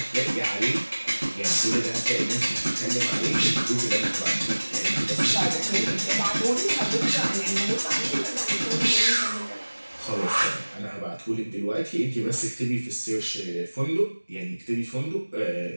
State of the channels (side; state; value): both; inverted; correlation -1.00